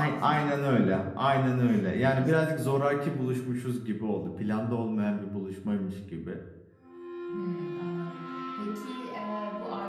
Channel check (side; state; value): both; identical; correlation 1.00